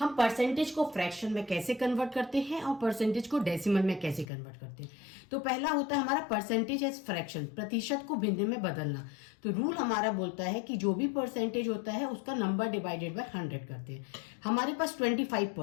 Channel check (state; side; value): drops out; right; at 4.2 s